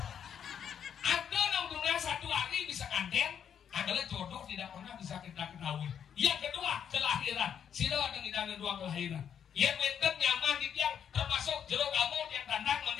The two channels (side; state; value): right; quieter; 8.4 dB